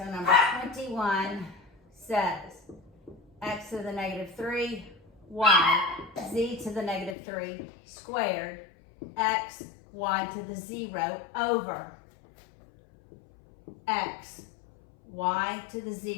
number 21 says x to the negative 3, y, z to the negative 3 squared, x, y to the 0 over x, y to the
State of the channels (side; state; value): right; drops out; at 7.2 s